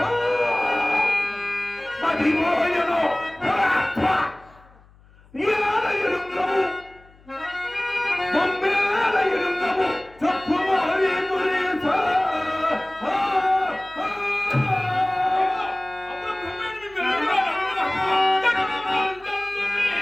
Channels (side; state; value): left; noise; hum, 27 dB below the sound